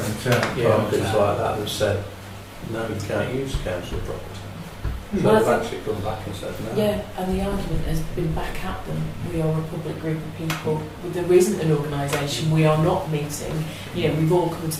parkers like that. They've said, no, you can't use council property. So Well, I they've think- actually come back and said no. Yeah, and the argument has been back at them. We are a public group of people. There isn't an organisation. We are not meeting. You know, we've all come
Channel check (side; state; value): both; identical; correlation 1.00